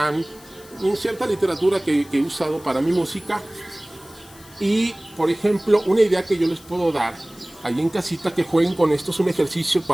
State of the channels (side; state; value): left; noise; hiss, 23 dB below the sound